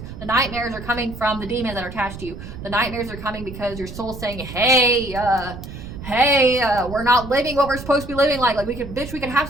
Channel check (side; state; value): right; noise; rumble, 11 dB below the sound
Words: The nightmares are coming from the demons that are attached to you. The nightmares are coming because your soul's saying, hey, we're not living what we're supposed to be living like we could have